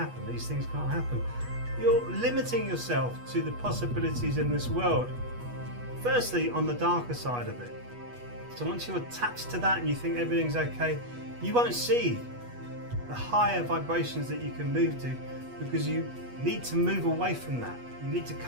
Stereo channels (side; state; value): left; late; 8.2 ms